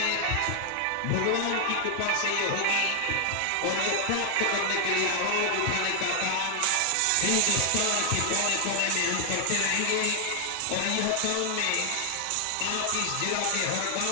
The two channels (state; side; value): different; both; correlation 0.00